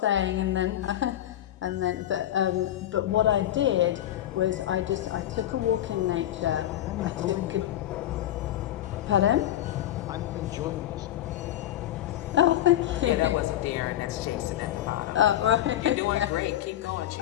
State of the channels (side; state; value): right; quieter; 12.6 dB